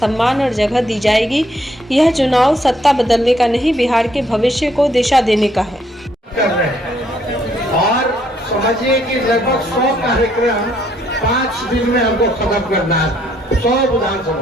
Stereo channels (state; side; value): normal; both; correlation 0.69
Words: और जगह दी जाएगी। यह चुनाव सत्ता बदलने का नहीं, बिहार के भविष्य को दिशा देने का है। और समझिए कि लगभग 100 कार्यक्रम 5 दिन में हमको खत्म करना है, 100